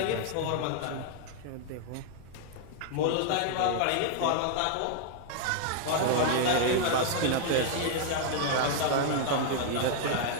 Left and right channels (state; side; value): different; both; correlation 0.00